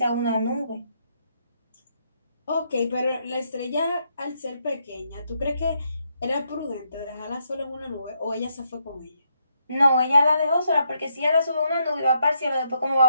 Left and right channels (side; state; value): both; inverted; correlation -0.76